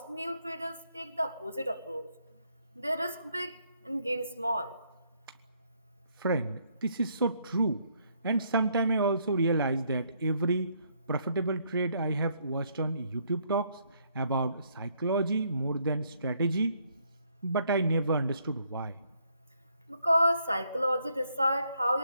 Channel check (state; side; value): inverted; both; correlation -0.71